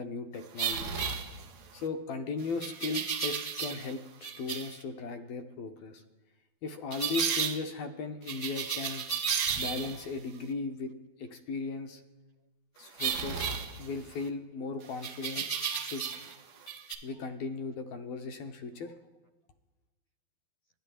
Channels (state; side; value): late; right; 12 ms